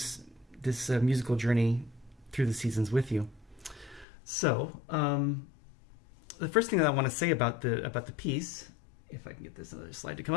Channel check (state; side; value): drops out; right; at 4.0 s